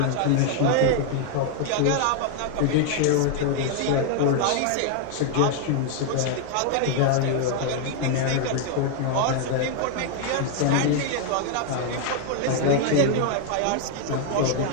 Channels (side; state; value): both; different; correlation 0.00